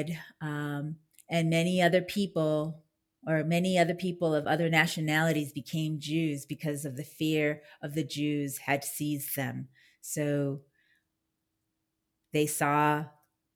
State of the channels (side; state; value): both; identical; correlation 1.00